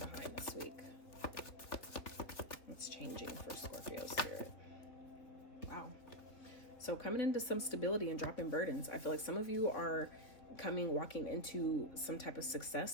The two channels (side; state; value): right; late; 3.2 ms